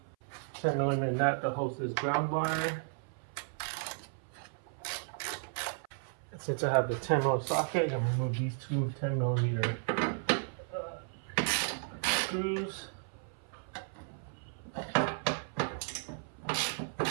10mm nut that holds this ground wire. Since I have the 10mm socket, I'm going to remove these two 10mm screws.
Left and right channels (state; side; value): silent; left; 55 dB below the other